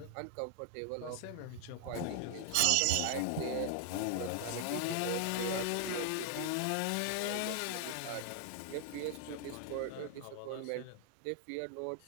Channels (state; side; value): different; both; correlation 0.00